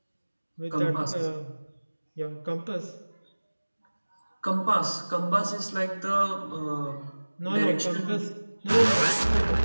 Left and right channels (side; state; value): both; inverted; correlation -1.00